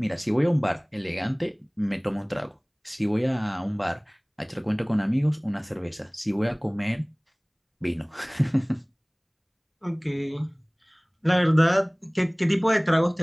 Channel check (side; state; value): both; identical; correlation 1.00